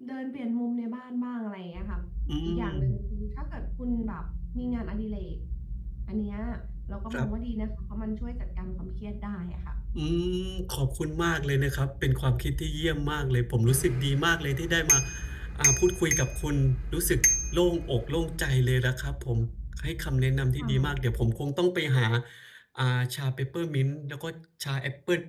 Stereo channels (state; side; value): identical; both; correlation 1.00